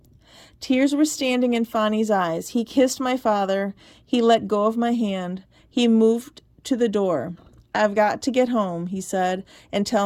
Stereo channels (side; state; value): both; identical; correlation 1.00